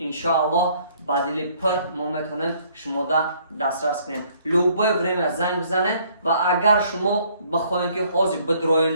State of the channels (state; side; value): inverted; both; correlation -0.63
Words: بدیل پر ما میتونیم شما دسترس کنیم. لوبای وریم زنگ بزنین و اگر شما بخواین که حاضر